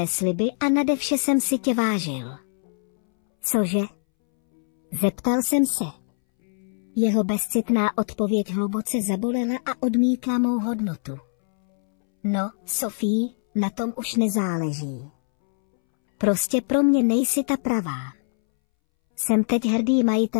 sliby a nade vše jsem si tě vážil. Cože? Zeptal jsem se. Jeho bezcitná odpověď hluboce zabolela a odmítla mou hodnotu. No, Sofie, na tom už nezáleží. Prostě pro mě nejsi ta pravá. Jsem teď hrdý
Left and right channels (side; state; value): right; silent; 63 dB below the other